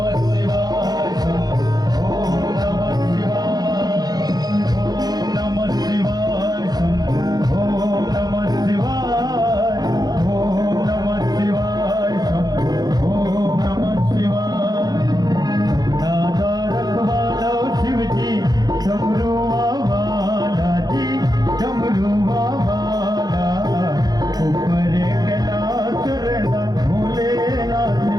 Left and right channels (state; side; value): late; left; 0.19 ms